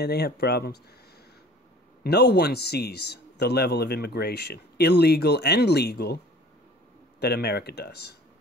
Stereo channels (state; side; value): normal; both; correlation 0.47